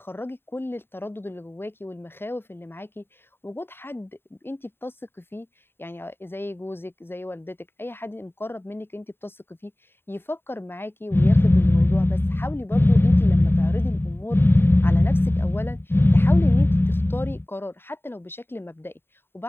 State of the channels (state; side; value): late; right; 0.11 ms